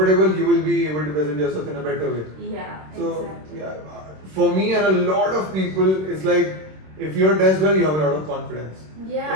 you will be able to present yourself in a better way. Yeah, So, exactly. for me and a lot of people, it's like if you're dressed well, you have a lot of confidence.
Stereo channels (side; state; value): left; late; 26 ms